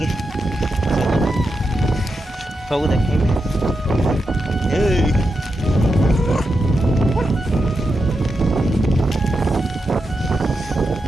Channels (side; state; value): both; normal; correlation 0.87